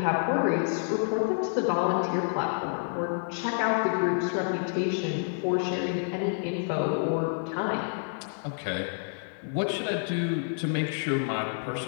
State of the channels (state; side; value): silent; right; digital silence